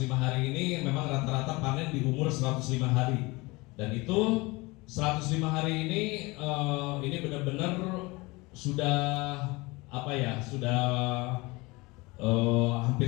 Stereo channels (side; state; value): right; quieter; 23.8 dB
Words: hari ini memang rata-rata panen di umur 105 hari, dan itu 105 hari ini benar-benar sudah apa ya, sudah hampir